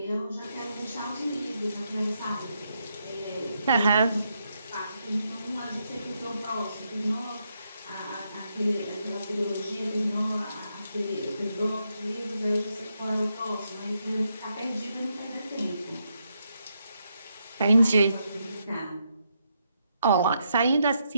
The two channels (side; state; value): both; inverted; correlation -0.80